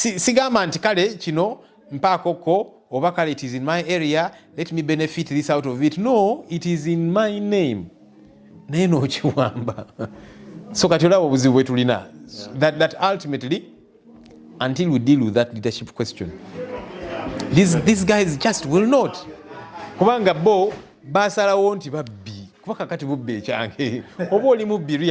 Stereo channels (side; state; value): both; identical; correlation 1.00